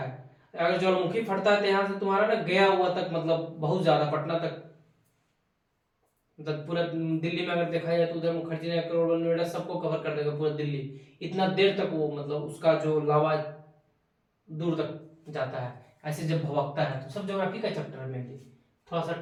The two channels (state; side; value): identical; both; correlation 1.00